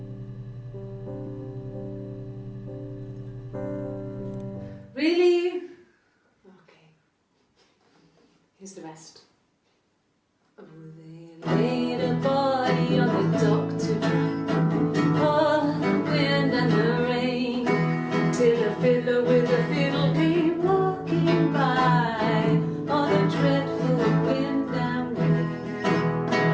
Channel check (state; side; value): identical; both; correlation 1.00